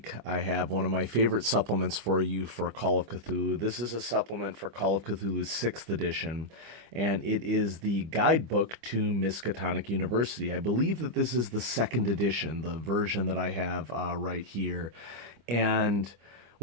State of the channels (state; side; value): late; left; 25 ms